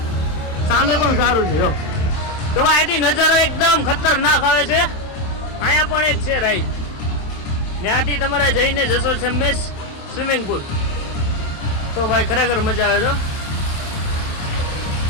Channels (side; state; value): right; late; 27 ms